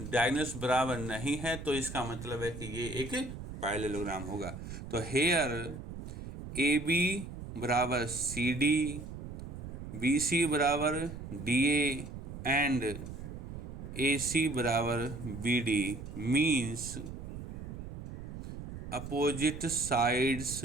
डायगोनल्स बराबर नहीं है, तो इसका मतलब है कि ये एक पैरेललोग्राम होगा। तो हेयर ए बी बराबर सी डी, बी सी बराबर D A and A C बराबर B D means opposite sides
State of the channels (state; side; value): noise; right; rumble, 10 dB below the sound